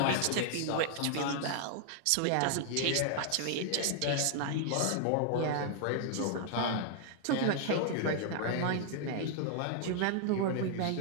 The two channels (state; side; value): different; both; correlation 0.00